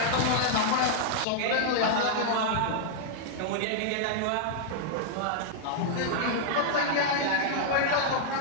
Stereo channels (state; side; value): different; both; correlation -0.01